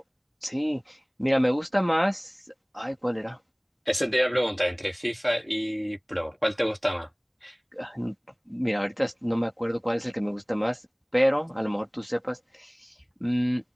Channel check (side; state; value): both; identical; correlation 1.00